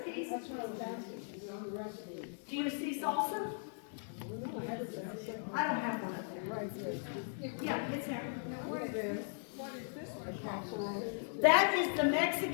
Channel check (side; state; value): right; silent; digital silence